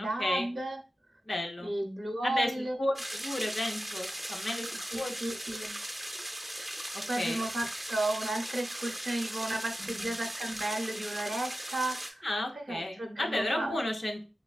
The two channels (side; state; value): both; normal; correlation 0.93